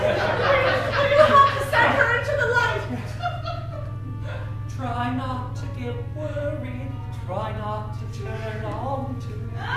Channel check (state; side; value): identical; both; correlation 1.00